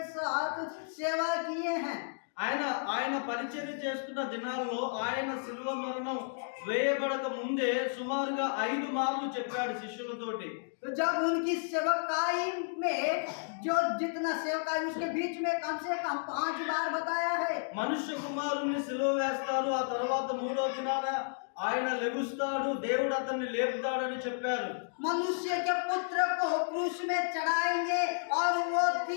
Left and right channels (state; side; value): silent; right; digital silence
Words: साथ सेवा किए हैं। ఆయన పరిచర్య చేస్తున్న దినాల్లో ఆయన శిలువ మరణం వేయబడక ముందే సుమారుగా 5 మార్లు చెప్పాడు శిష్యులతోటి. तो जब उनकी सेवकाई में जो जितना सेवकाई उसके बीच में कम से कम 5 बार बताया है। మనుష్య కుమారుణ్ణి సిలువ వేస్తారు, ఆ తర్వాత 3వ దినాన ఆయన లెగుస్తాడు, దేవుడు అతన్ని లేపుతాడని చెప్పారు. मनुष्य के पुत्र को क्रूस में चढ़ाएंगे और वो